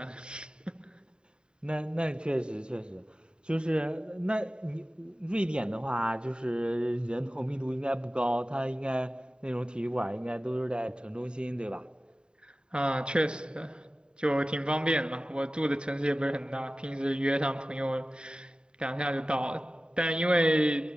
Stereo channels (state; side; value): late; left; 0.049 ms